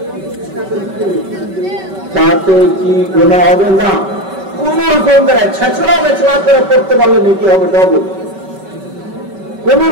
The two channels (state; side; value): late; left; 5.2 ms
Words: তাতে কি গুনাহ হবে? না, কোন রকম করে ছেঁচড়া মেচড়া করে পড়তে পারলে নেকি হবে ডবল। কোন